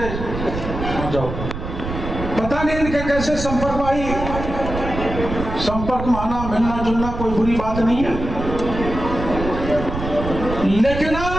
आ जाओ, पता नहीं इनके कैसे संपर्क में आई। संपर्क में आना, मिलना जुलना कोई बुरी बात नहीं है, लेकिन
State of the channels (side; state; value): right; noise; rumble, 6 dB below the sound